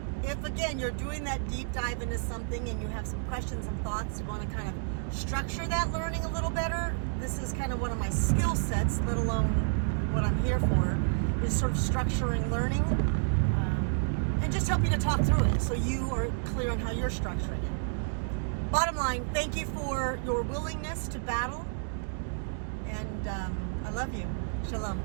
If, again, you're doing that deep dive into something and you have some questions and thoughts, you want to kind of structure that learning a little better, this is kind of one of my skill sets, let alone what I'm here for, is sort of structuring learning, and just help you to talk through it so you are clear on how you're structuring it. Bottom line, thank you for your willingness to battle, and I love you. Shalom.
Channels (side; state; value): left; silent; digital silence